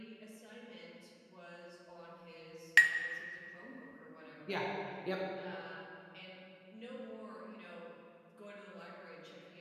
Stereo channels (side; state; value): both; identical; correlation 1.00